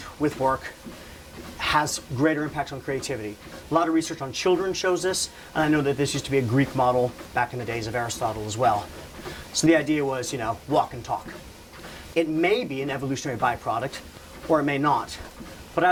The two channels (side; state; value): both; identical; correlation 1.00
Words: with work has greater impact on creativity. A lot of research on children shows this, and I know that this used to be a Greek model back in the days of Aristotle as well. So the idea was, walk and talk. It may be an evolutionary byproduct, or it may not, but